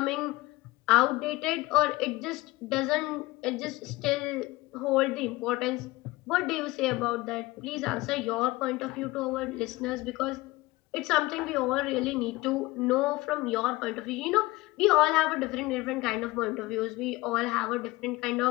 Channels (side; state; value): right; quieter; 20.6 dB